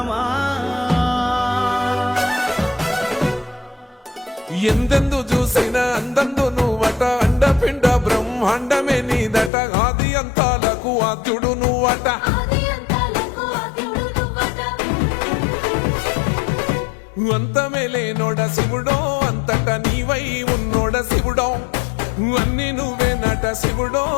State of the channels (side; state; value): right; drops out; at 9.5 s